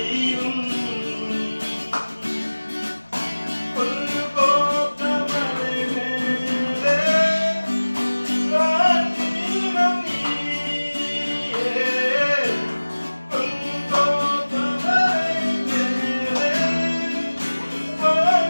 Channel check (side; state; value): both; inverted; correlation -1.00